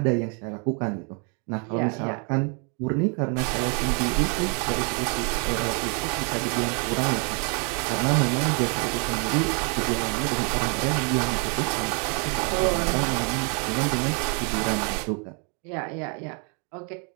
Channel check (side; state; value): left; quieter; 37.7 dB